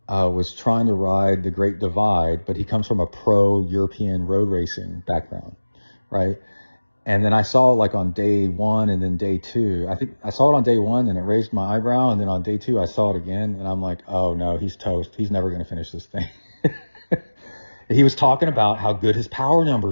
was trying to ride the Great Divide, but he comes from a pro European road racing background, right? And then I saw like on day one and then day two, I think I saw it on day one and it raised my eyebrow. And then on day two, I saw it again and I'm like, oh no, he's toast. He's never going to finish this thing. He was talking about how good his power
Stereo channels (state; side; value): inverted; both; correlation -1.00